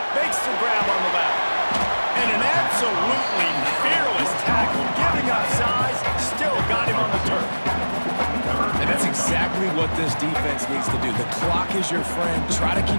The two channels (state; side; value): inverted; both; correlation -1.00